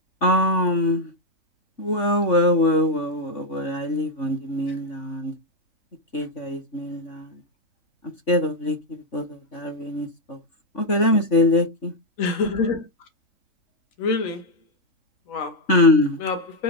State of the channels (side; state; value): right; late; 3.5 ms